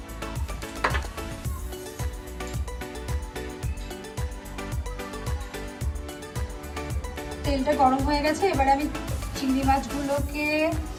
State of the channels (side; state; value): both; identical; correlation 1.00